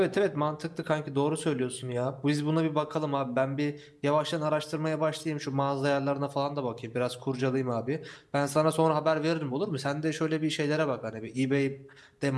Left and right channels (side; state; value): both; identical; correlation 1.00